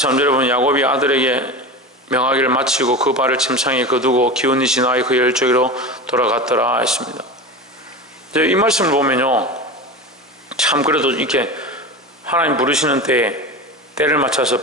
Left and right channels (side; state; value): both; normal; correlation 0.27